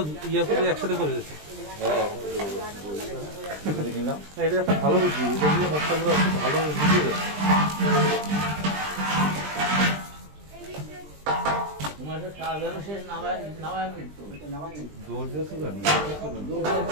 ইয়ে করে একসাথে করে দিচ্ছে। এটা একটা ভালো বুদ্ধি, এটা দিয়ে মশলাগুলো ভালো বুঝিয়ে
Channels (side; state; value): left; late; 20 ms